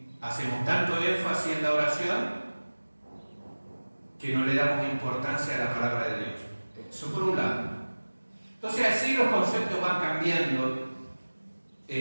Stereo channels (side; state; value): both; inverted; correlation -1.00